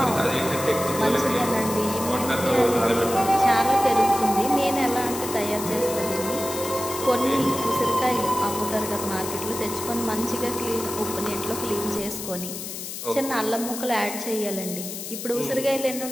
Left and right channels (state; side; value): noise; left; hiss, 8 dB below the sound